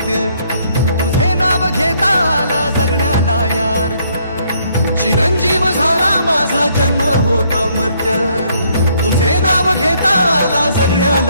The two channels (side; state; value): both; inverted; correlation -0.68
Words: तुझे नाव घेता आला जगण्याला यार्थ, चिरंजीव झाला माझा जन्म होता मर्त्य, तुझे नाव घेता आला